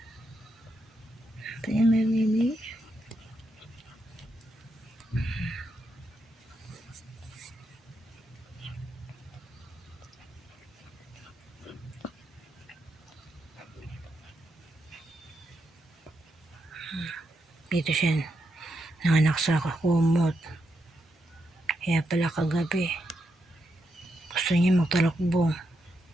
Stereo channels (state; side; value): normal; both; correlation 0.82